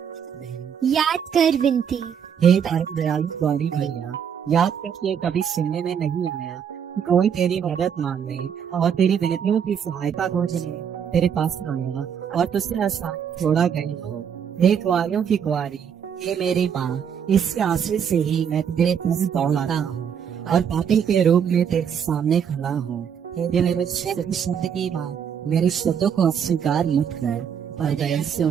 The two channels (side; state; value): left; quieter; 7.8 dB